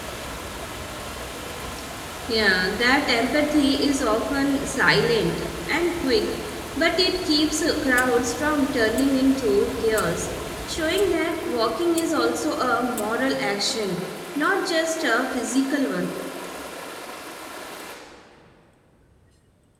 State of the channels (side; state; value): both; identical; correlation 1.00